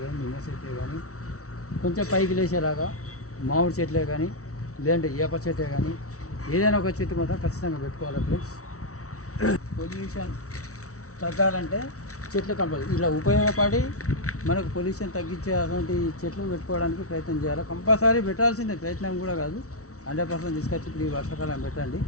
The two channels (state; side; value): late; right; 0.64 ms